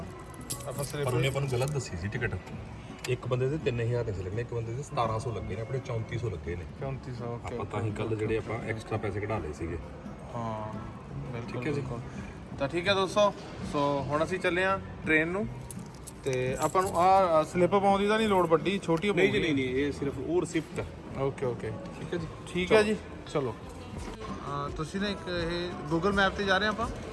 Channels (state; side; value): identical; both; correlation 1.00